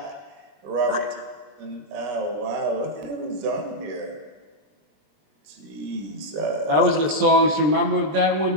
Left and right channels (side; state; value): left; late; 20 ms